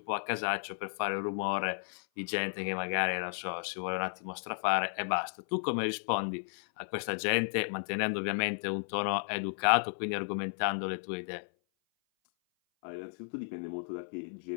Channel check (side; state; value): right; silent; 55 dB below the other